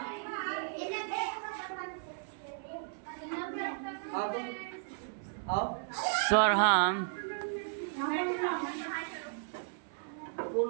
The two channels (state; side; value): silent; left; 55 dB below the other